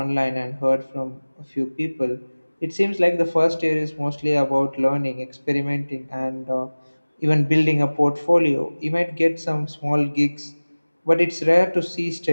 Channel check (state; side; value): inverted; both; correlation -1.00